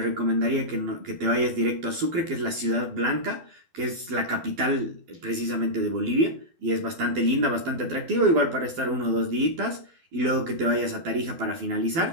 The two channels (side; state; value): left; late; 12 ms